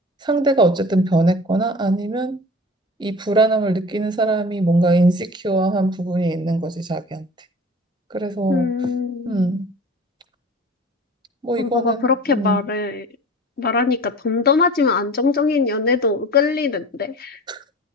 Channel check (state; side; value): normal; both; correlation 0.40